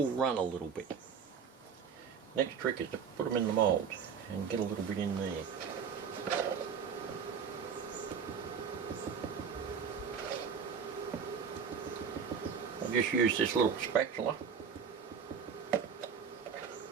run a little bit. Next trick is to put them in the mould and get a little bit in there. I just use this little spatula.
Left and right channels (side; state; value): left; quieter; 6.7 dB